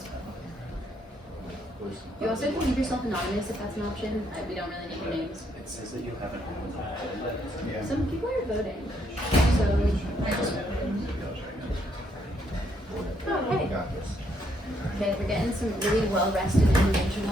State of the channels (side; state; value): both; normal; correlation 0.73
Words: You also can leave yourself anonymous if that's an option. We don't really need your names. It says that you haven't Yeah. Some people are voting. So I just okay. Okay, we're getting some really well-rested